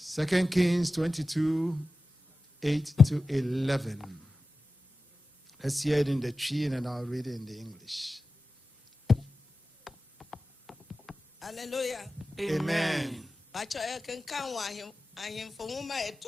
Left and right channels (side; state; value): both; normal; correlation 0.94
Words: 2 Kings 22, 8 to 11. Let's hear it in the tree and I'll read it in the English. Hallelujah. Amen.